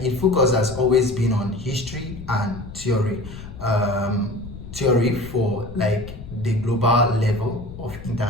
has always been on history and theory for the global level of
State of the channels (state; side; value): noise; left; rumble, 13 dB below the sound